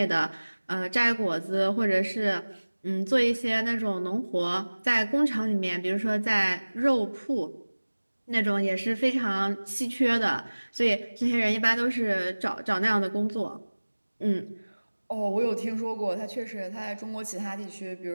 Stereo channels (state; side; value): inverted; both; correlation -1.00